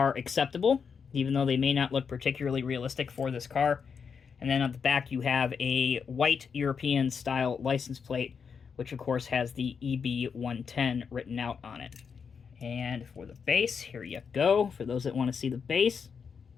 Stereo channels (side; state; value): right; quieter; 6.2 dB